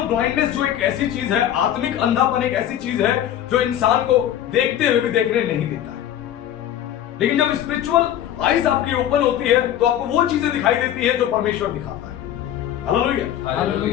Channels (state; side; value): quieter; right; 11.2 dB